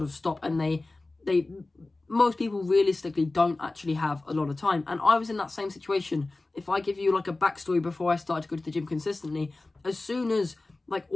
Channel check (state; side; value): quieter; right; 3.1 dB